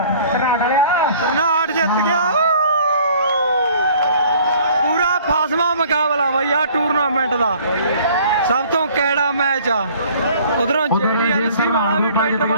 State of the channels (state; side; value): inverted; both; correlation -0.54